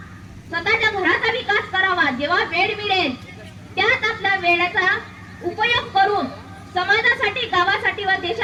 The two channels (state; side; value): identical; both; correlation 1.00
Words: स्वतःच्या घराचा विकास करावा. जेव्हा वेळ मिळेल त्यात आपल्या वेळेचा उपयोग करून समाजासाठी, गावासाठी व